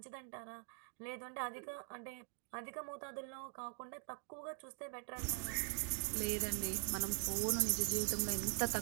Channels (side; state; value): left; silent; digital silence